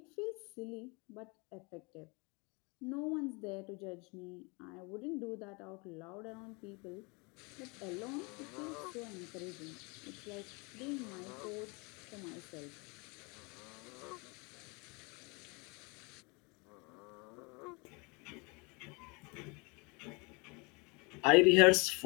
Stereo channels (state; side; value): quieter; right; 29.4 dB